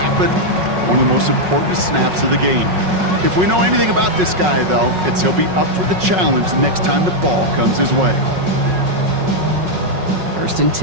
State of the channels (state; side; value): late; left; 5.4 ms